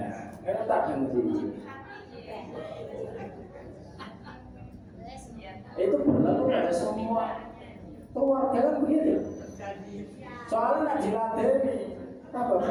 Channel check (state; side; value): identical; both; correlation 1.00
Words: tak dengerin. Itu berlaku pada semua keluarga kan begitu. Soalnya nak dilatih apa